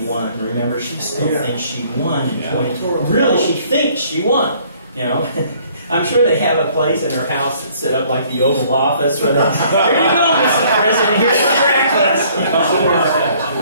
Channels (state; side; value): inverted; both; correlation -0.59